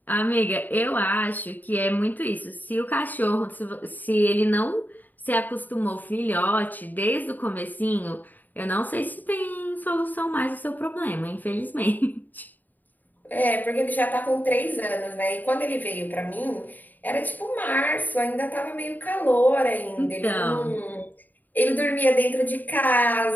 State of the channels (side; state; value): right; late; 0.085 ms